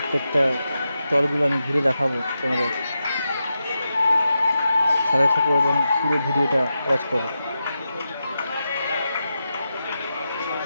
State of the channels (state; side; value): inverted; both; correlation -0.89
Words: স্টলগুলো আমি ঘুরে দেখাবো তোমাদের। সাথে থাকো এবং পুরো ভিডিওটা ওয়াচ করো।